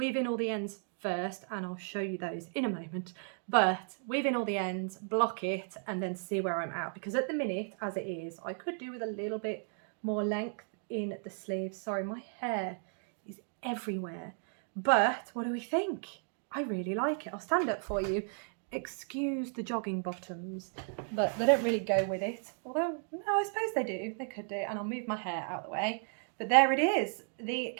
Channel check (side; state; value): left; silent; 55 dB below the other